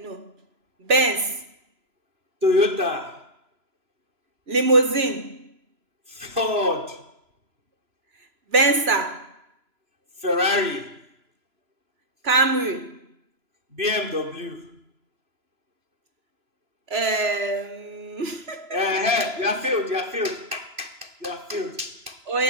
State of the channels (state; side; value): late; left; 3.0 ms